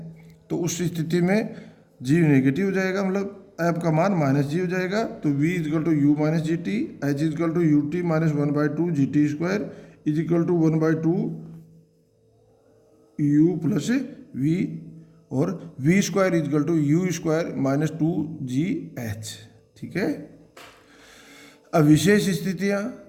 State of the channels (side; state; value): both; identical; correlation 1.00